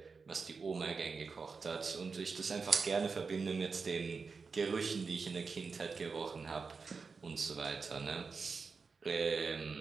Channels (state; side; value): quieter; left; 4.8 dB